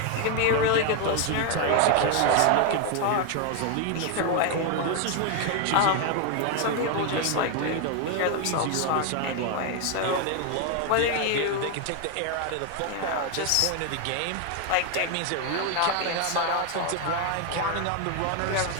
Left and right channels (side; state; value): both; different; correlation 0.01